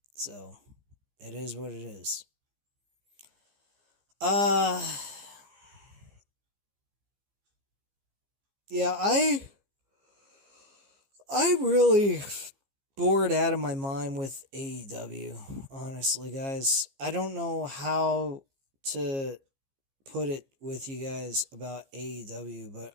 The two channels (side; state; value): left; late; 15 ms